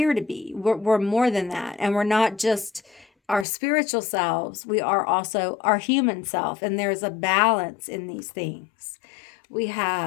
to be. We're more than that. And we're not just our spiritual selves, we are also our human self, and there's a balance in these things. We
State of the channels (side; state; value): right; drops out; at 3.5 s